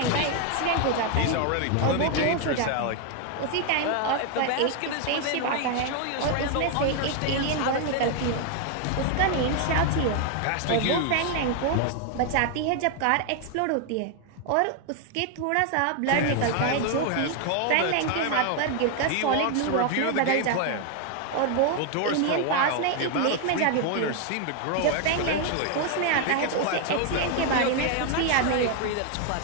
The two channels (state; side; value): different; both; correlation 0.01